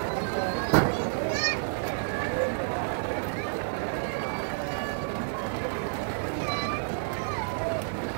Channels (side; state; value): left; silent; digital silence